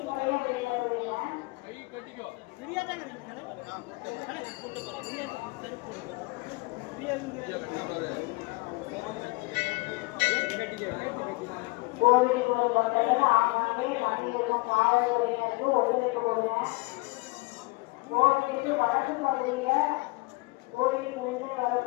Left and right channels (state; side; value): quieter; right; 25.0 dB